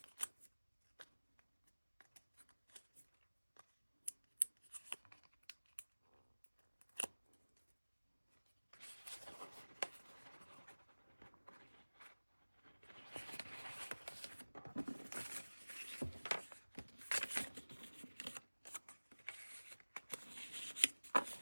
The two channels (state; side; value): inverted; both; correlation -1.00